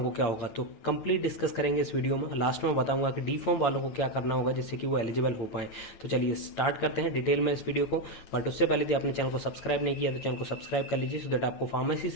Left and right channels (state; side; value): late; right; 9.2 ms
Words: को क्या होगा। तो कंप्लीट डिस्कस करेंगे इस वीडियो में। लास्ट में बताऊंगा कि डी फॉर्म वालों को क्या करना होगा जिससे कि वो एलिजिबल हो पाए। तो चलिए स्टार्ट करते हैं डिटेल में इस वीडियो को। बट उससे पहले यदि आपने चैनल को सब्सक्राइब नहीं किया तो चैनल को सब्सक्राइब कर लीजिए, सो दैट आपको फार्मेसी